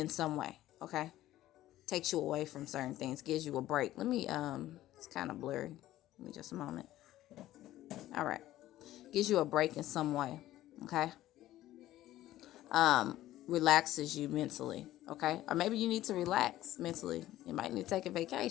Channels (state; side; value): quieter; right; 14.5 dB